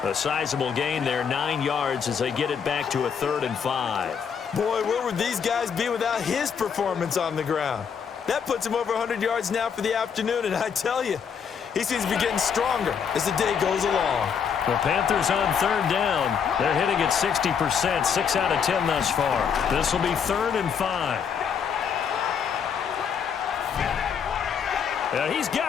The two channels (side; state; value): right; quieter; 7.0 dB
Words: A sizable gain there, 9 yards as they get it back to a 3rd and 5. Boy, where would these guys be without his performance on the ground? That puts him over 100 yards now for the afternoon, and I tell you, he seems to be getting stronger as the day goes along. The Panthers on 3rd down. They're hitting at 60%, 6 out of 10 thus far. This will be 3rd and 5. He's